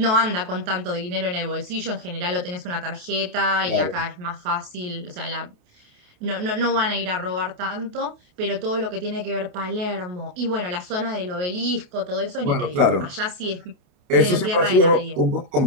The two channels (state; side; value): late; left; 28 ms